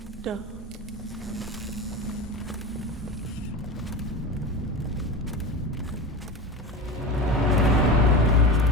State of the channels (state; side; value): normal; both; correlation 0.27